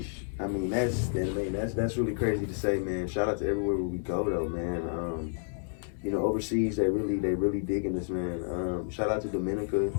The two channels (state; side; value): silent; right; 58 dB below the other